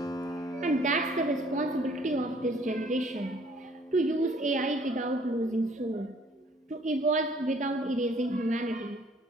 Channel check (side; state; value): both; normal; correlation 0.59